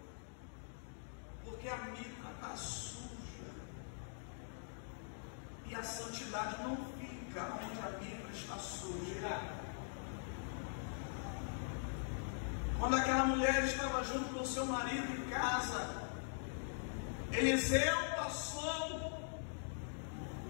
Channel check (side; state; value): right; silent; digital silence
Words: Porque a mitra está suja. E a santidade não fica onde a mitra está suja. Quando aquela mulher estava junto com seu marido em casa, Eliseu passou